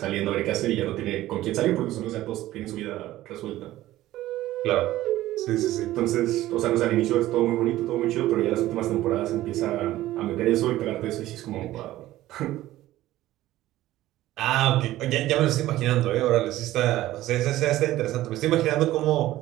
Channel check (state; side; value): quieter; left; 15.3 dB